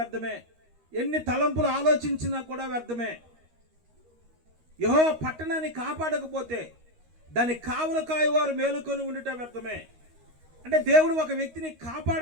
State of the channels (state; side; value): late; left; 13 ms